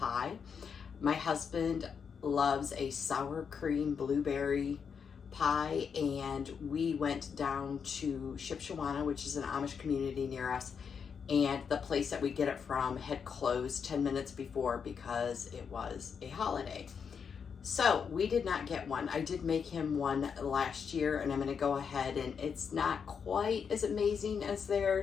My husband loves a sour cream blueberry pie, and we went down to Shipshewana, which is an Amish community near us, and the place that we get it from had closed 10 minutes before because it was a holiday. So we did not get one. I did make him one last year, and I'm going to go ahead, and it's not quite as amazing as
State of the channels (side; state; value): right; quieter; 6.5 dB